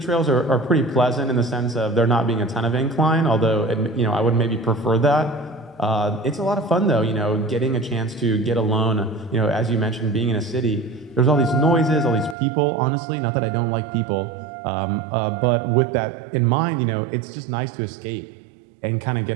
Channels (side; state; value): left; drops out; at 12.4 s